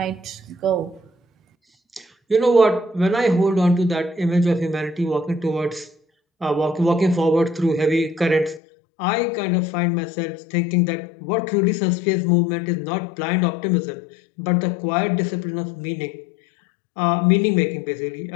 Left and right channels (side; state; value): right; drops out; at 8.6 s